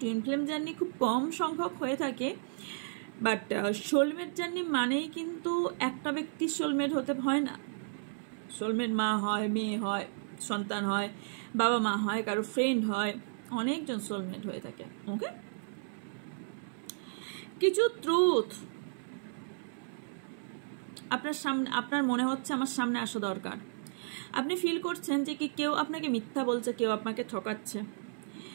টুইন ফ্লেম জার্নি খুব কম সংখ্যক হয়ে থাকে, বাট সোলমেট জার্নি মানেই কিন্তু একটা ব্যক্তির সোলমেট হতে হয় না। সোলমেট মা হয়, মেয়ে হয়, সন্তান হয়, বাবা মা হয়, কারো ফ্রেন্ড হয়, অনেকজন সোলমেট হয়ে থাকে। ওকে, কিছু ট্রুথ আপনার সামনে, আপনার মনে হচ্ছে আমার সামনে আসা দরকার। আপনি ফিল করছেন যে কি কেউ আপনাকে মিথ্যা বলছে, কেউ আপনাকে ঠকাচ্ছে।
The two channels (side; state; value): left; silent; 55 dB below the other